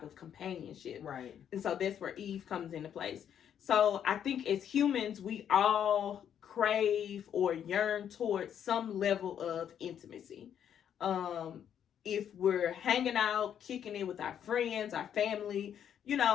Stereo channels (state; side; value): quieter; right; 9.1 dB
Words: of companionship. Right. And so that's where Eve comes into place. So I think as humans, we all crave or yearn towards some level of intimacy. If we're hanging out, kicking it with our friends, our family,